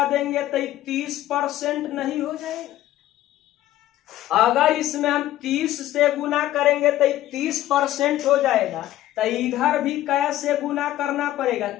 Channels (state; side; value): quieter; right; 14.1 dB